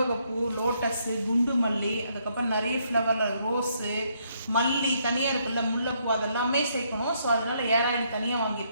லோட்டஸு, குண்டு மல்லி, அதுக்கப்புறம் நிறைய ஃப்ளவரில் ரோஸு, மல்லி தனியாக இருக்குல்ல, முல்லைப்பூ, அதெல்லாமே சேர்க்கணும். ஸோ அதனால ஏர் ஆயில் தனியாக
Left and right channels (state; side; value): inverted; both; correlation -0.72